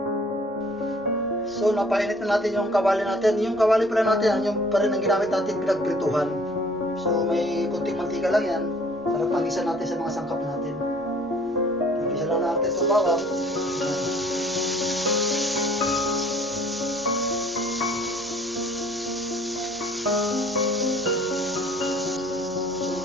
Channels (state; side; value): normal; both; correlation 0.55